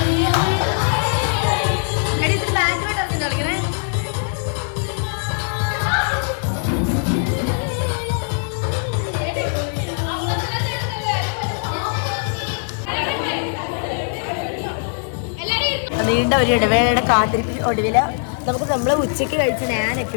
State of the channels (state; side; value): silent; right; 65 dB below the other